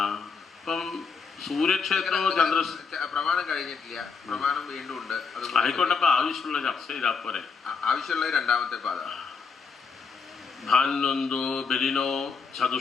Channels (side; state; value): right; quieter; 5.3 dB